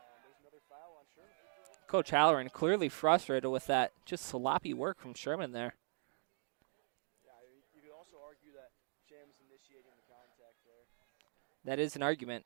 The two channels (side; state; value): left; silent; 51 dB below the other